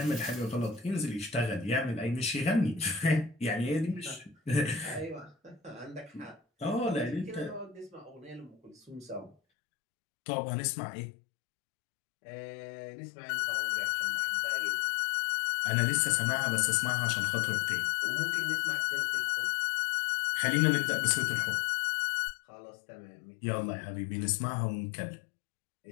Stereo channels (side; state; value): right; drops out; at 9.3 s